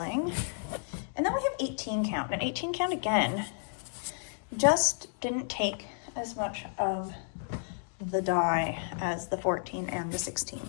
And then we have 18 count. And 18 count again just didn't take as much of the dye as the 14 and the 16.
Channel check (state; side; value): silent; right; digital silence